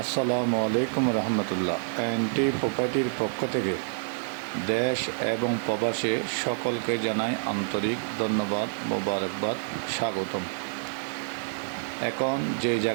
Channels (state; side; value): silent; left; digital silence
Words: আসসালামু আলাইকুম রহমতুল্লাহ। এনটি প্রপার্টির পক্ষ থেকে দেশ এবং প্রবাসে সকলকে জানাই আন্তরিক ধন্যবাদ, মোবারকবাদ, স্বাগতম। এখন যে